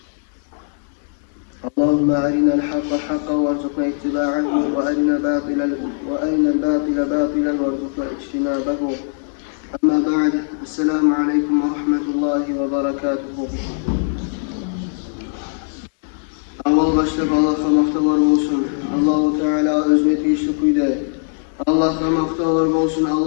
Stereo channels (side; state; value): right; silent; 66 dB below the other